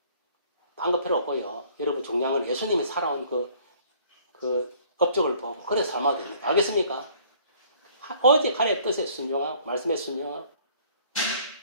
딴 거 필요 없고요. 여러분 중요한 건 예수님이 살아온 그 업적을 보고 그래 삶아야 됩니다. 알겠습니까? 오직 하나님의 뜻에 순종하고 말씀에 순종하고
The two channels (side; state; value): both; inverted; correlation -0.57